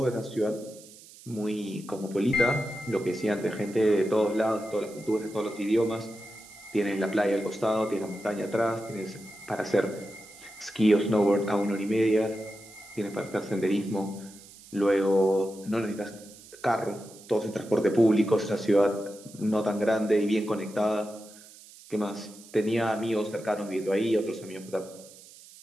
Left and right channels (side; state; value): right; noise; hiss, 20 dB below the sound